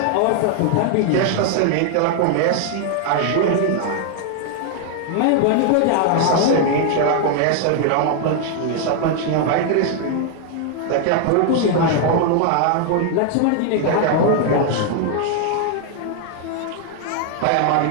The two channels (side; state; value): both; different; correlation 0.00